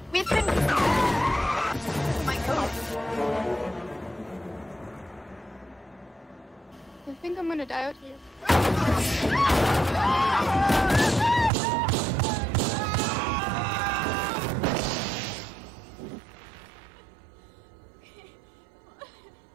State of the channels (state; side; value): drops out; left; at 11.5 s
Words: We've been... Oh my God. I think I'm gonna die out here.